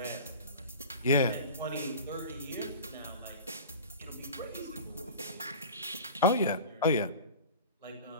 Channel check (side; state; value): both; inverted; correlation -0.36